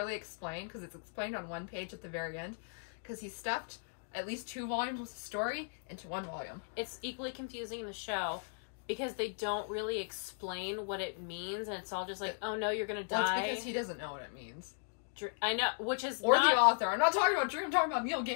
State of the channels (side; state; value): right; silent; digital silence